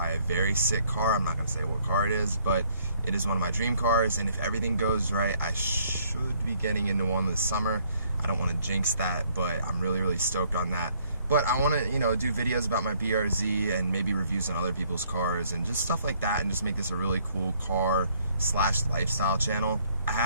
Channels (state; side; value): inverted; both; correlation -0.65